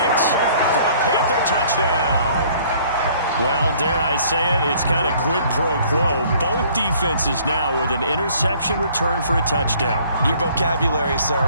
for a Panther touchdown. Well, dare I say it, it's kind of quid pro quo. Both defenses now with an interception return for a touchdown. Your vocabulary,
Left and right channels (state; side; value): inverted; both; correlation -0.57